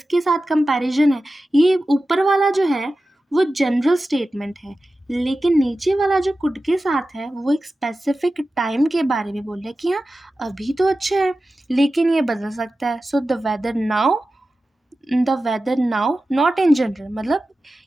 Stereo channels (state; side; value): normal; both; correlation 0.94